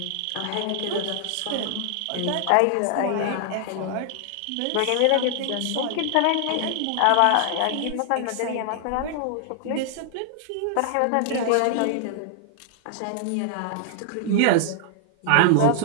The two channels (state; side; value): different; both; correlation 0.00